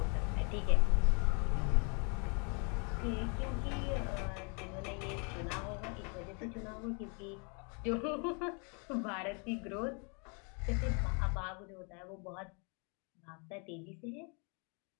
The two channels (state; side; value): quieter; right; 36.2 dB